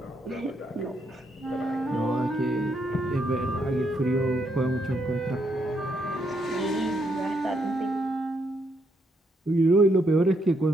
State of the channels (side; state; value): both; normal; correlation 0.76